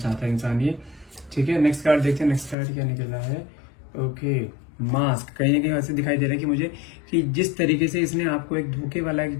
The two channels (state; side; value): drops out; right; at 2.6 s